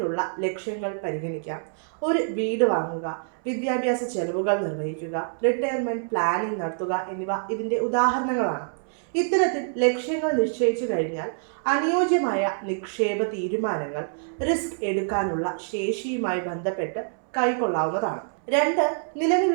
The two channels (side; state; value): left; silent; 61 dB below the other